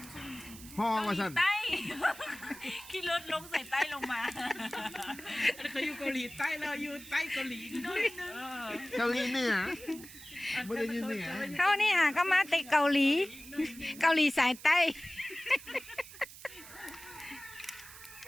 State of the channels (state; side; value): noise; right; hiss, 16 dB below the sound